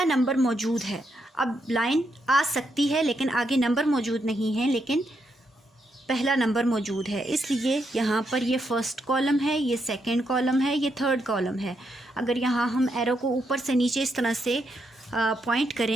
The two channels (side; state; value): both; normal; correlation 0.80